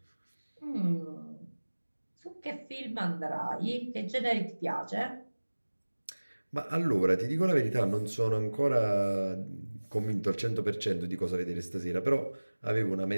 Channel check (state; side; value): inverted; both; correlation -1.00